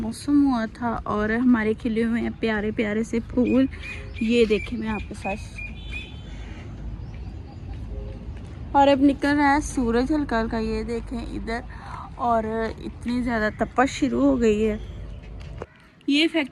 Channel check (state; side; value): identical; both; correlation 1.00